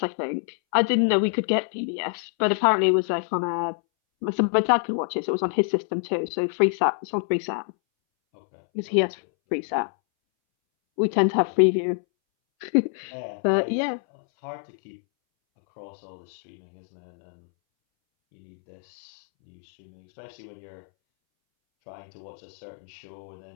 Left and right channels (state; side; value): silent; right; 61 dB below the other